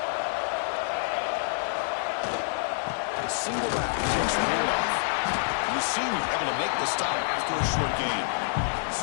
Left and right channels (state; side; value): silent; right; 60 dB below the other